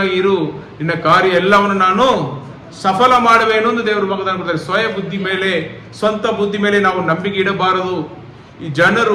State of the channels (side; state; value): both; identical; correlation 1.00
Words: ಇರು, ನಿನ್ನ ಕಾರ್ಯ ಎಲ್ಲವನ್ನು ನಾನು ಸಫಲ ಮಾಡುವೇನು ಎಂದು ದೇವರು ವಾಗ್ದಾನ ಕೊಡ್ತಾರೆ. ಸ್ವಯ ಬುದ್ಧಿ ಮೇಲೆ, ಸ್ವಂತ ಬುದ್ಧಿ ಮೇಲೆ ನಾವು ನಂಬಿಕೆ ಇಡಬಾರದು. ಈ